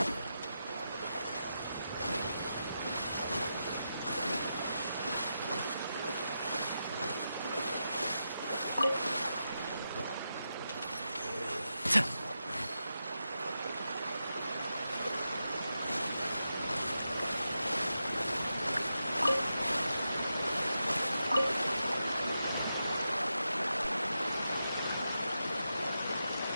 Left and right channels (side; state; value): both; inverted; correlation -0.87